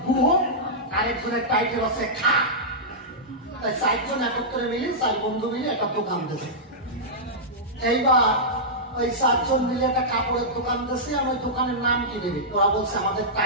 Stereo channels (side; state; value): both; normal; correlation -0.12